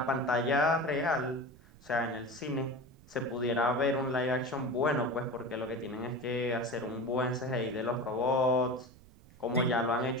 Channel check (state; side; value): noise; right; rumble, 23 dB below the sound